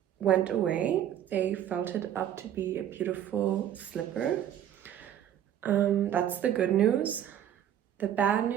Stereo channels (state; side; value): quieter; left; 10.5 dB